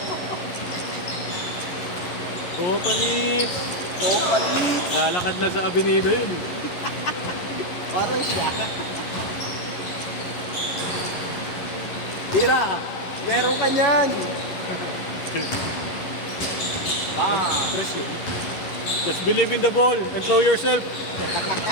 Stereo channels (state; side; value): late; right; 11 ms